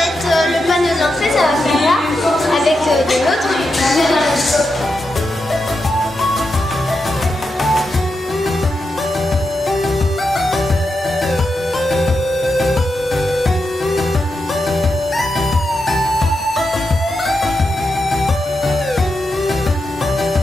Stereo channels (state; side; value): normal; both; correlation 0.86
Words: être le panneau d'entrée, ça va faire là, avec de l'autre.